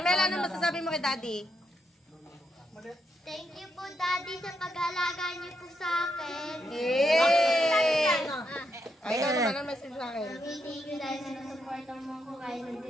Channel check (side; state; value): both; normal; correlation 0.80